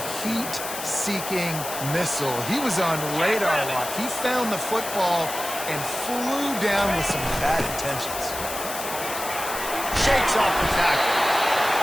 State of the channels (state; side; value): noise; left; hiss, 7 dB below the sound